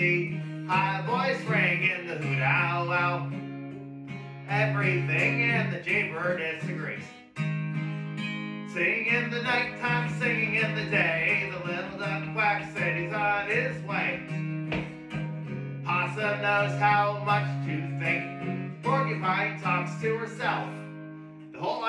High voice ringing the hoot owl owl. Everything in the jaybird disagrees. Singing in the nighttime, singing in the day. The little duck quack said he's on his way. Possum knows how much to think. Porcupine talks to herself. The whole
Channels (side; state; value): both; identical; correlation 1.00